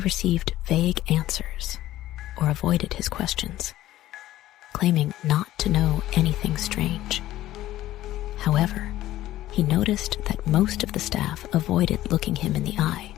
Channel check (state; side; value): quieter; right; 14.6 dB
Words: received vague answers or avoided his questions, claiming not to know anything strange. However, he noticed that most of the staff avoided looking him in the eye,